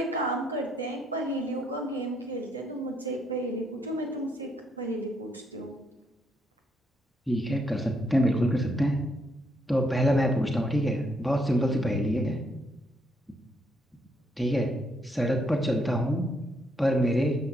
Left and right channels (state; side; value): normal; both; correlation 0.73